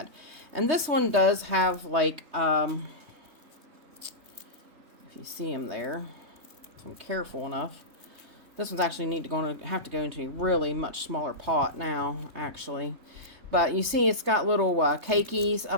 And this one does have like, if you see him there, if I'm careful enough. This one's actually have to go into a really much smaller pot now, actually. But you see it's got little cakeys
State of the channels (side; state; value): left; late; 3.2 ms